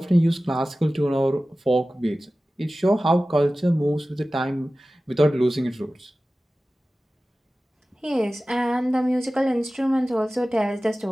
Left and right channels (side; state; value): both; normal; correlation 0.96